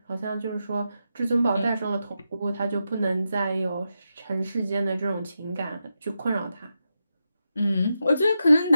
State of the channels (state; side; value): inverted; both; correlation -0.87